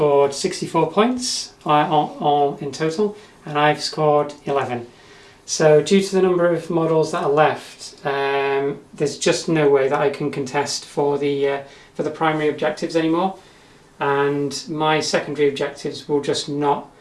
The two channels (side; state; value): both; identical; correlation 1.00